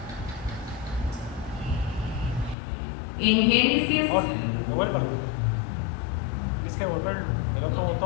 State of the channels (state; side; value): drops out; right; at 2.6 s